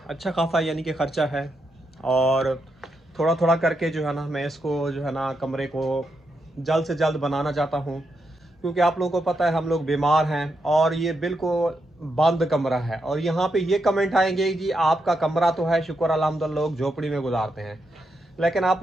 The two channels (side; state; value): both; normal; correlation 0.83